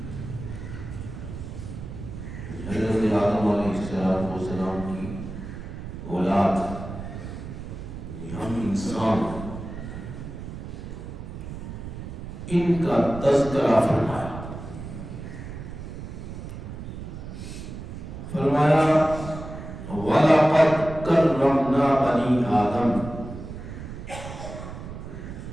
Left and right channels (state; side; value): noise; right; rumble, 9 dB below the sound